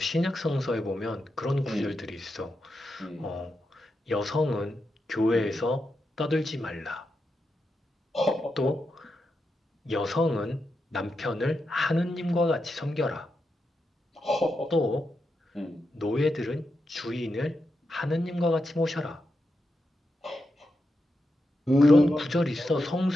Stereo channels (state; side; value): normal; both; correlation 0.87